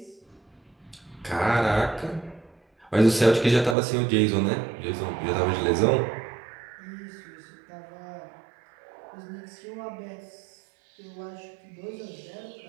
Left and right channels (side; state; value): left; drops out; at 3.8 s